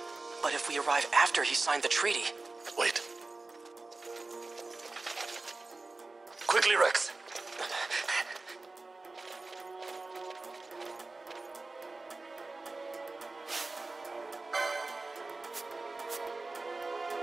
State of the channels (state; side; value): quieter; left; 3.4 dB